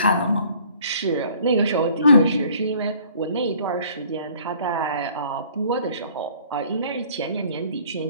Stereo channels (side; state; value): both; inverted; correlation -0.55